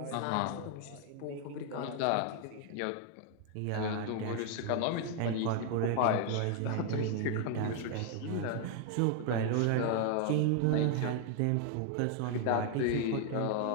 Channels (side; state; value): both; different; correlation 0.00